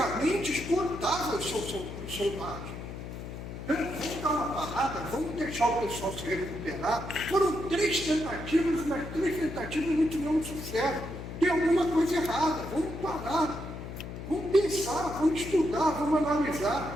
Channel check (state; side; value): noise; left; hum, 9 dB below the sound